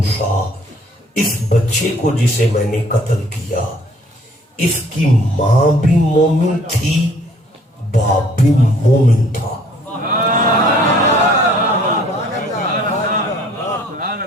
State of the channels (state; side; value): normal; both; correlation 0.58